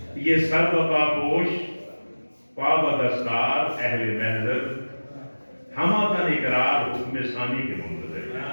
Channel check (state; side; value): inverted; both; correlation -1.00